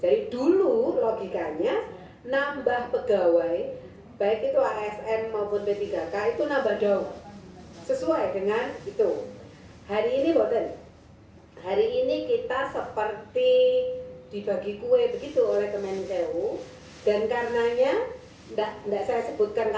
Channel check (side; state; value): both; identical; correlation 1.00